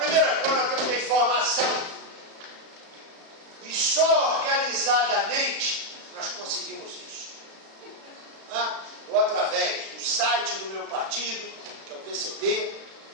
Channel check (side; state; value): left; late; 36 ms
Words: coisa é a informação. E só organizadamente nós conseguimos isso. Ou através do site do meu partido, que é o PCB,